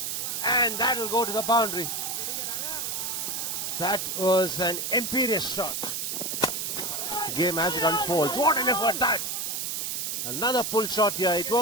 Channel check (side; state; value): right; noise; hiss, 2 dB below the sound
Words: and that'll go to the boundary. That was an imperious shot. The game as it unfolds. What an effort that! Another pull shot here. It